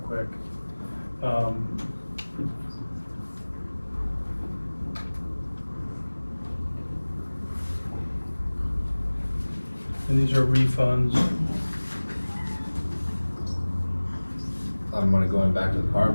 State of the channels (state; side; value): inverted; both; correlation -1.00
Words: quick. And these are refunds. I'm money going back to the car